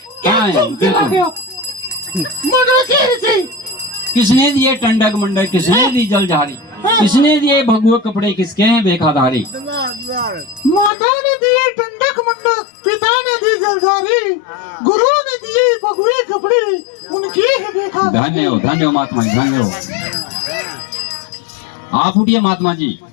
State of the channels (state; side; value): drops out; right; at 10.9 s